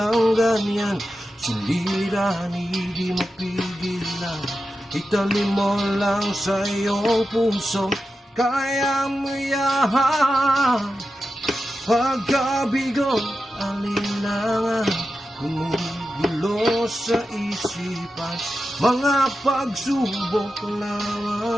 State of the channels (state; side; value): normal; both; correlation 0.91